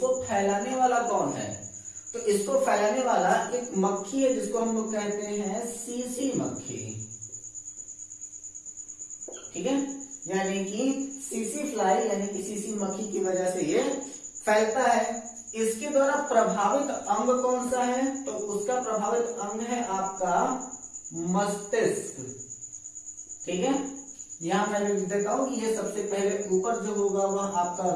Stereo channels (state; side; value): identical; both; correlation 1.00